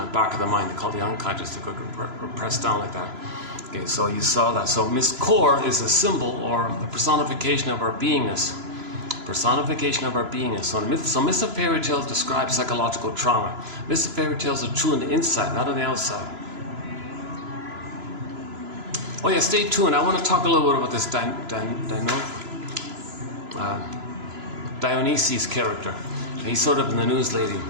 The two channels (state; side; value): late; left; 3.0 ms